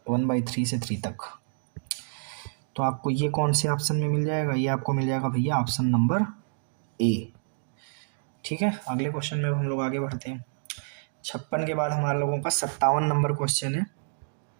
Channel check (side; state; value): left; silent; digital silence